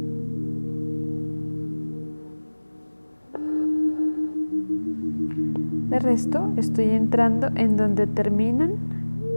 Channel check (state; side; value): inverted; both; correlation -1.00